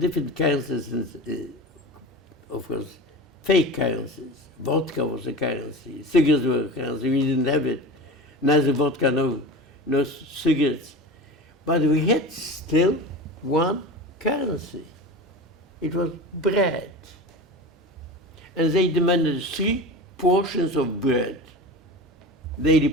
currencies, of course, fake currencies. Vodka was a currency, cigarettes were a currency, we didn't have it. Neither vodka, no cigarettes. But we had still one currency. It was bread. And they demanded 3 portions of bread, daily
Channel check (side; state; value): both; normal; correlation 0.31